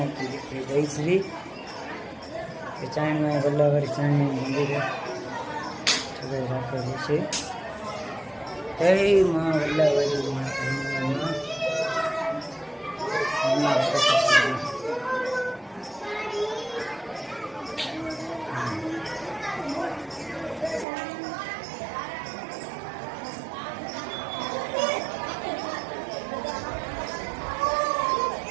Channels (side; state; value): left; drops out; at 20.9 s